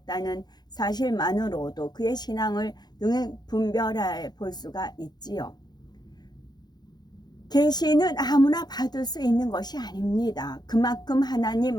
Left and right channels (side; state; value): right; late; 0.20 ms